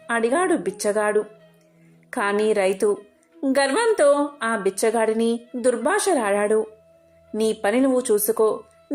అడిగాడు బిచ్చగాడు. కాని రైతు గర్వంతో ఆ బిచ్చగాడిని దుర్భాషలాడాడు. నీ పని నువ్వు చూసుకో,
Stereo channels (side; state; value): both; identical; correlation 1.00